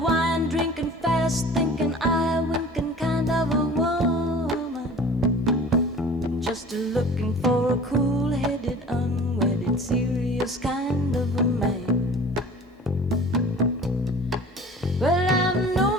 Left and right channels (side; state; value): both; normal; correlation 0.44